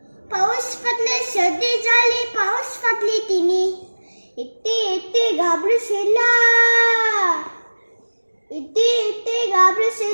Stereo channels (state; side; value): inverted; both; correlation -1.00